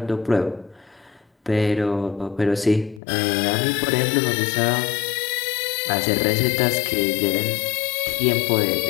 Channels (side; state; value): right; drops out; at 3.0 s